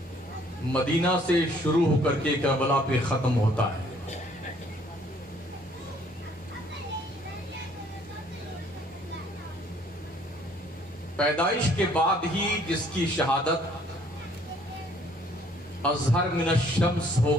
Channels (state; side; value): normal; both; correlation 0.61